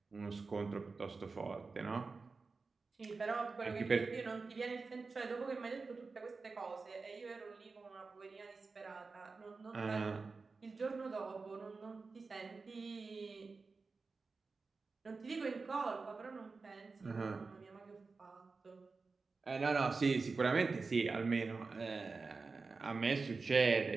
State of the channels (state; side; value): quieter; left; 4.2 dB